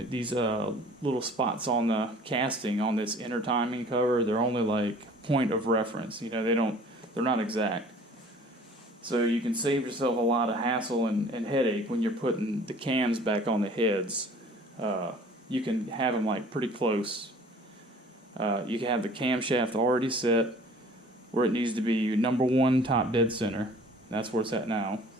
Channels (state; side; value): normal; both; correlation 0.50